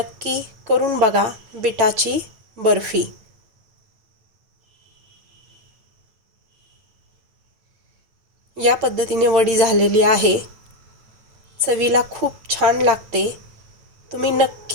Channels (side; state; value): left; late; 8.8 ms